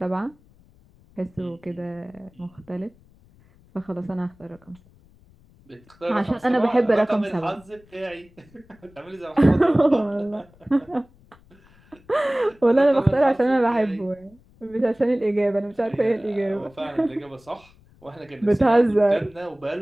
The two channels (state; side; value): noise; left; rumble, 28 dB below the sound